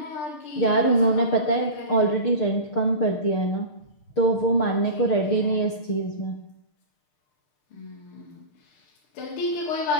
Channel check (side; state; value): right; late; 6.6 ms